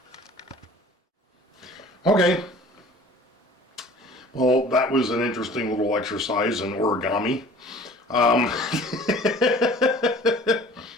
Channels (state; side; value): normal; both; correlation 0.47